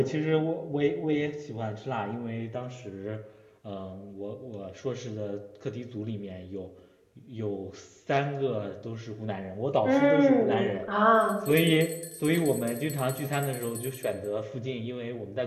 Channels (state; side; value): identical; both; correlation 1.00